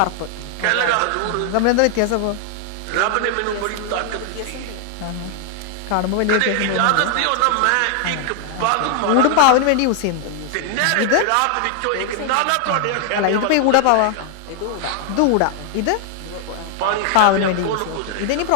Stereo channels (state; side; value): different; both; correlation 0.00